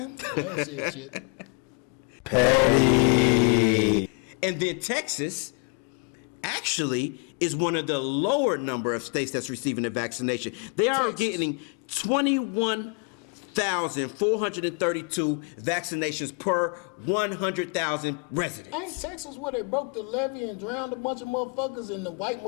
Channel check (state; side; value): quieter; right; 36.4 dB